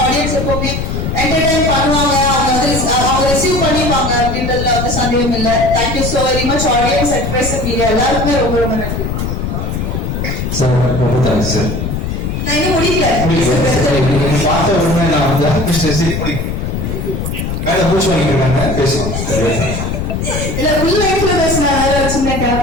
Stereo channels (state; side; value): noise; left; rumble, 3 dB below the sound